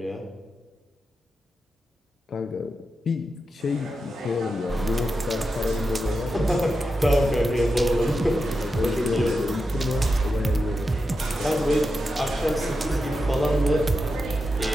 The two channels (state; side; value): normal; both; correlation 0.89